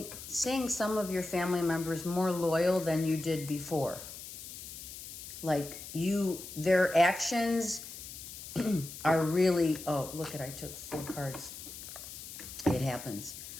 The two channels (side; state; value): left; noise; hiss, 11 dB below the sound